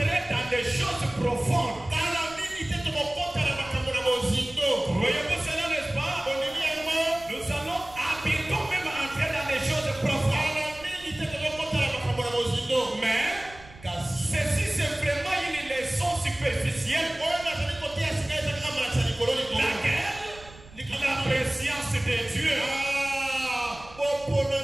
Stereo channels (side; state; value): right; noise; rumble, 20 dB below the sound